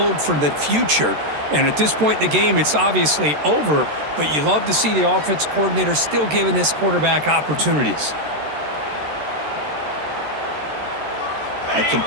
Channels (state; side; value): late; left; 13 ms